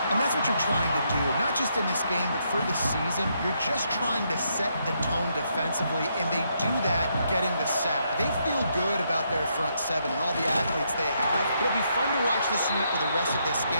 And that's what you're trying to do, not just in this game, but for the season. You're just trying to set the tone defensively, and they do that getting the sack. They feel good about their front 7 and all the athletes they have. It'll be fun to watch this unit for the rest of this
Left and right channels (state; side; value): inverted; both; correlation -0.76